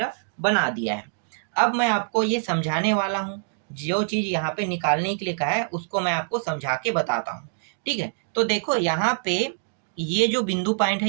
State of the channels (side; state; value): left; silent; digital silence